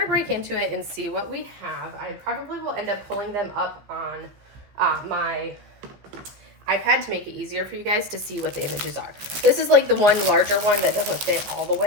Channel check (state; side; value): late; left; 15 ms